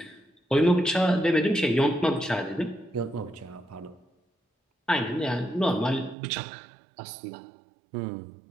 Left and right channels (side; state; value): left; drops out; at 6.2 s